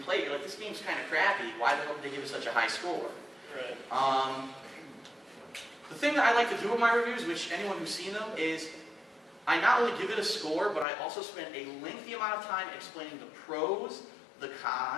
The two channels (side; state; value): right; drops out; at 10.9 s